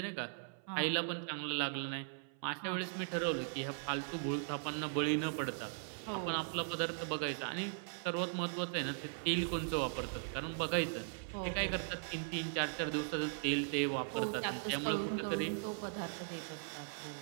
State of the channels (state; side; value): silent; left; 52 dB below the other